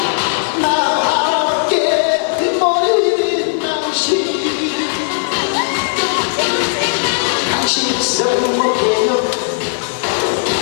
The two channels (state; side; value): silent; right; digital silence